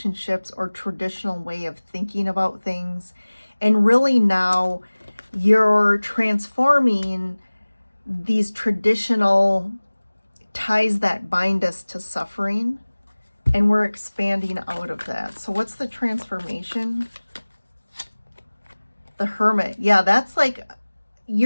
or traditional way of thinking about things. And really now you're transforming these traditional ties that bind us to suffering, and we're expanding out of that. So what's the transformation? The Hermit. Yeah, that's like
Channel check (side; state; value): both; inverted; correlation -1.00